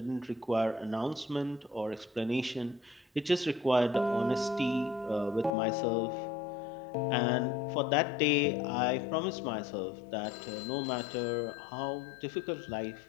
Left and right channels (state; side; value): drops out; right; at 5.5 s